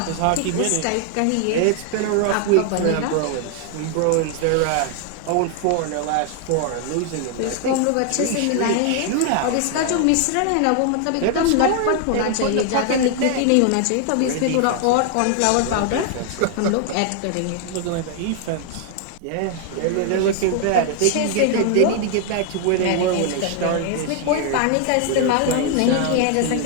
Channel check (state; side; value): different; both; correlation 0.00